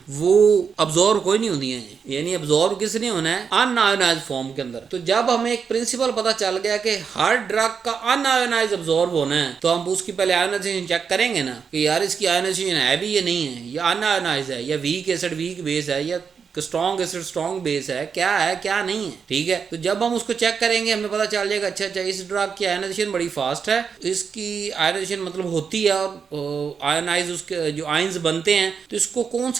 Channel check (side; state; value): left; quieter; 6.2 dB